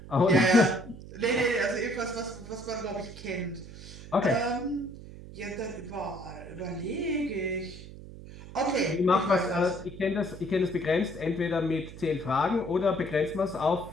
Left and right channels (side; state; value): right; noise; hum, 15 dB below the sound